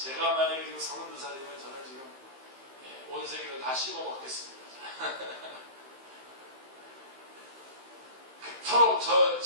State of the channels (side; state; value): left; late; 15 ms